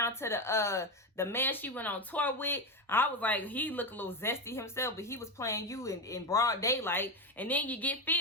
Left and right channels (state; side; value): normal; both; correlation 0.13